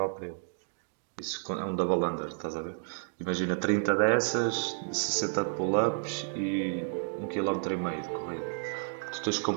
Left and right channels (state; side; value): silent; left; digital silence